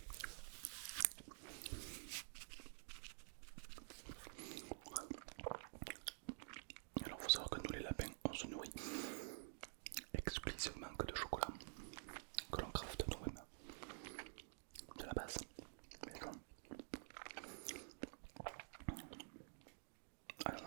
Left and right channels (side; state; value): left; silent; digital silence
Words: Alors faut savoir que nous les lapins on se nourrit exclusivement que de chocolat que l'on crafte nous-mêmes de la base. Mais non. Ah